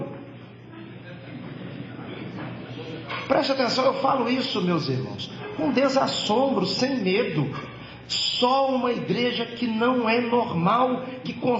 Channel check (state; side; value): identical; both; correlation 1.00